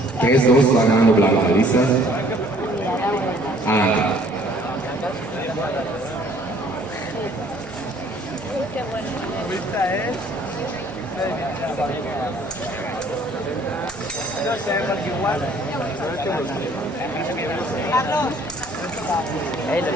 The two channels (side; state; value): both; normal; correlation 0.58